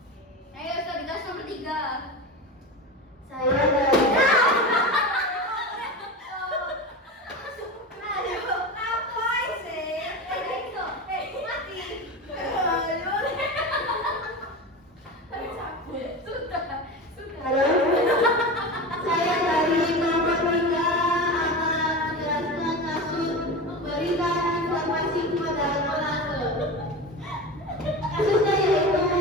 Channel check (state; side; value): normal; both; correlation 0.26